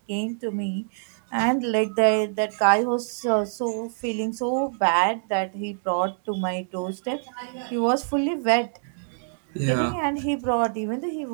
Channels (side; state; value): left; silent; digital silence